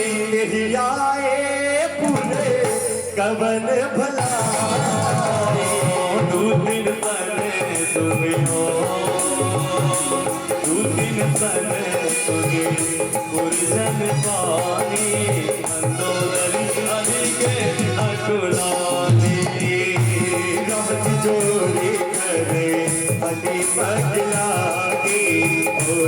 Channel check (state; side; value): identical; both; correlation 1.00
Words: आए पूरे कवन भलाई दू दिन पहले सुनियो दू दिन पहले सुनी गुरजन पानी अंदोदरी हरि के अकुलानी रात जोड़ी करे अति पगलागी